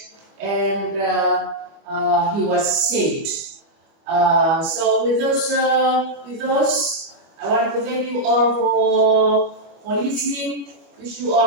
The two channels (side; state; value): left; late; 25 ms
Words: and he was saved. So with those, I want to thank you all for listening. Wish you